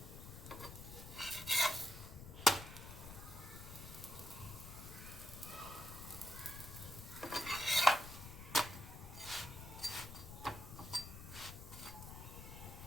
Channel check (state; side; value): noise; left; rumble, 11 dB below the sound